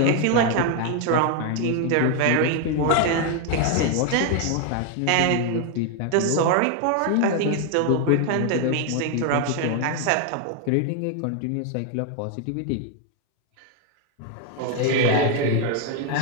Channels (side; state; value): both; different; correlation 0.01